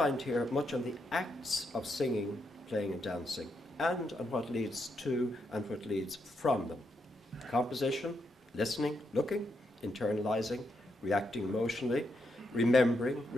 here much on the acts of singing, playing and dancing, and on what leads to and what leads from them. Composition, listening, looking, internalizing, reacting emotionally, remembering,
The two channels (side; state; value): both; normal; correlation 0.80